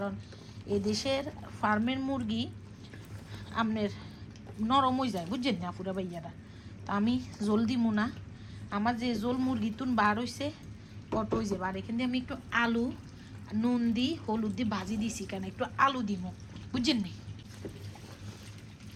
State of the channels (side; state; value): both; identical; correlation 1.00